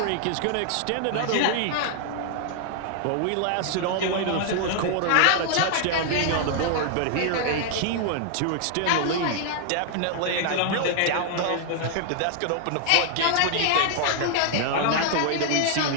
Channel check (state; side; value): different; both; correlation 0.00